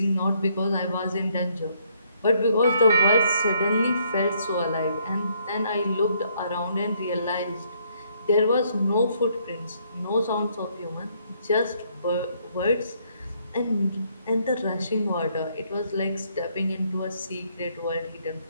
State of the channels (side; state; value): both; inverted; correlation -0.69